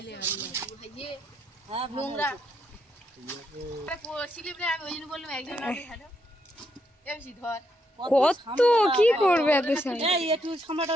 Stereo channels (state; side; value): normal; both; correlation 0.78